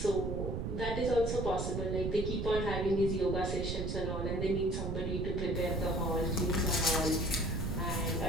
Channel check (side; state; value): right; noise; rumble, 2 dB below the sound